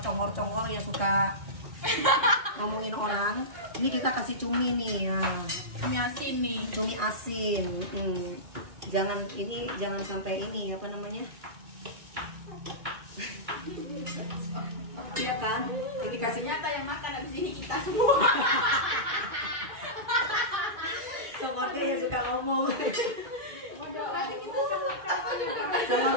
congor-congor yang suka ngomongin orang. Ini kita kasih cumi nih. Nah. Cumi asin nih. Cumi asin. Jangan sampai ini apa namanya? Iya kan? Ini kasih Ternyata yang makan habis ini kita semua. Congornya yang suka ngomong.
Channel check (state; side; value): late; left; 2.4 ms